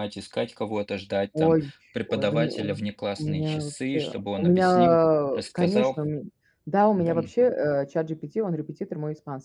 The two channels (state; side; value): identical; both; correlation 1.00